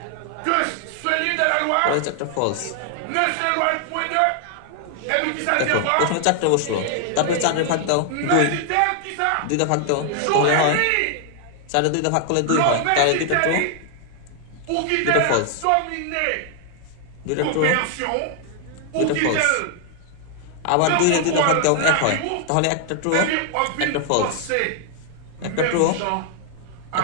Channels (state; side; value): different; both; correlation 0.00